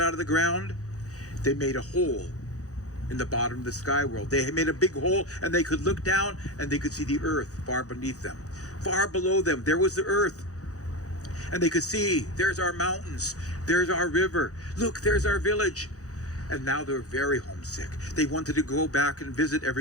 out of the ground, they made a hole in the bottom of the sky world. They made a big hole, and they could look down and they could see the earth far beneath them. Far below them, there was the earth. And they could see, there's our mountains, there's our river, look, there's our village. And now they're very homesick. They wanted to go back and visit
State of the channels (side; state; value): right; late; 0.66 ms